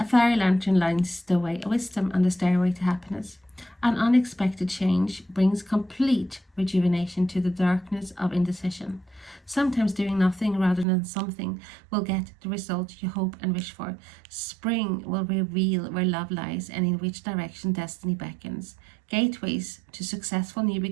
fairy lantern lights the way of wisdom on the stairway to happiness. An unexpected change brings complete rejuvenation to the darkness of indecision. Sometimes doing nothing rather than something will get the result you hope and wish for. Spring will reveal where love lies and in which direction destiny beckons. Gateways to successful new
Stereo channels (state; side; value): drops out; left; at 10.9 s